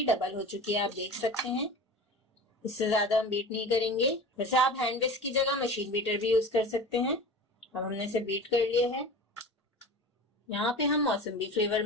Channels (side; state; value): both; normal; correlation 0.35